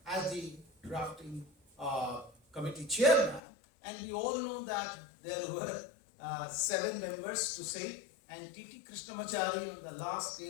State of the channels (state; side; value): drops out; right; at 3.4 s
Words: as the drafting committee chairman, and we all know that there were 7 members to say, and T.T. Krishnamachari on the last